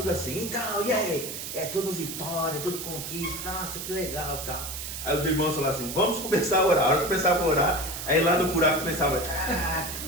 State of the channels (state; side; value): noise; right; hiss, 7 dB below the sound